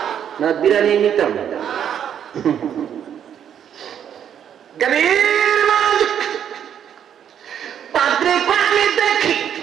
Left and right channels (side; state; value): left; quieter; 9.1 dB